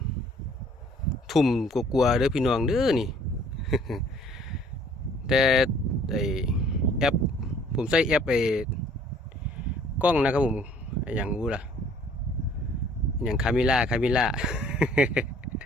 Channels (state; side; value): normal; both; correlation 0.56